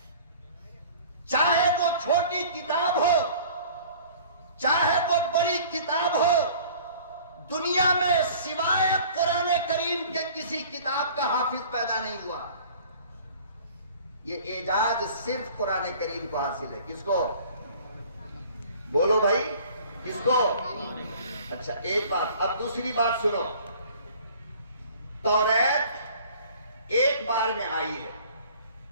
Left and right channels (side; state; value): both; inverted; correlation -0.49